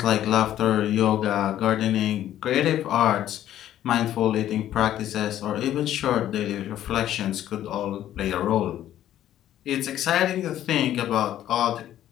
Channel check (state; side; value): quieter; right; 12.1 dB